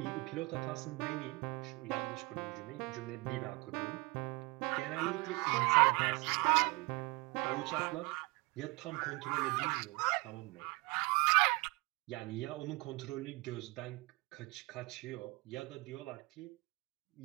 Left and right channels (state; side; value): quieter; left; 25.8 dB